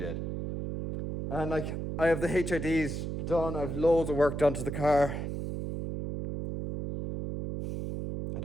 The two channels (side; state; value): right; noise; hum, 4 dB below the sound